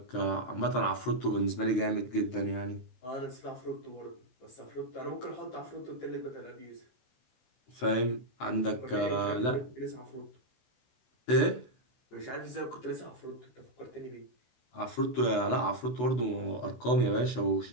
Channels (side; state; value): right; late; 16 ms